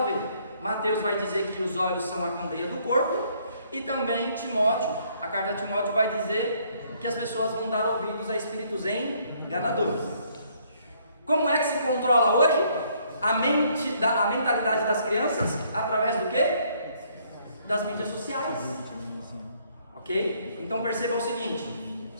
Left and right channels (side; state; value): both; inverted; correlation -0.66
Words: vê. Mateus vai dizer que os olhos são a candeia do corpo, e também Timóteo, a carta de Timóteo vai dizer que as pessoas vão dar ouvidos a espíritos enganadores. Como é que se controla hoje a mentalidade das crianças? Através do quê? Das mídias sociais. Ok? Então perceba o seguinte: